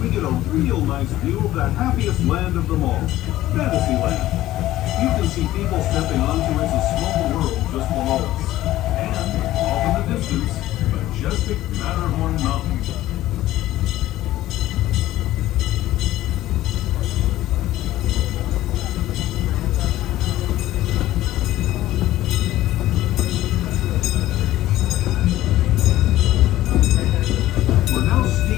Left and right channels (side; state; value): right; quieter; 15.0 dB